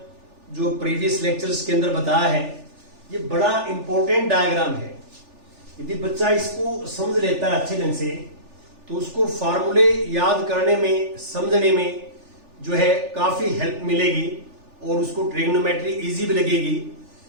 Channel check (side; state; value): left; late; 3.4 ms